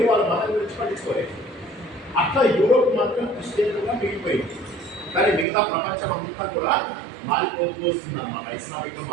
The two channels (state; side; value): drops out; left; at 5.5 s